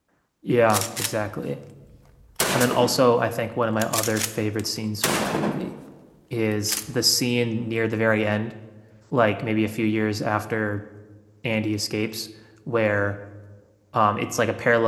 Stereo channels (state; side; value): identical; both; correlation 1.00